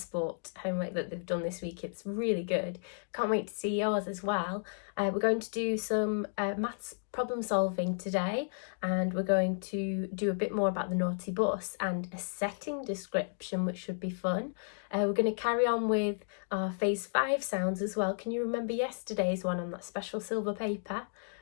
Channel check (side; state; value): right; silent; digital silence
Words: homework that they've done this week. It's really good. Can't wait to see yours as well. We're going to do some maths problem solving today, and we're going to do a bit more about the naughty bus and a setting description, which should be fun. We're going to carry on with our phase 5 sounds as well. Can you remember yesterday's one on that special silver paper?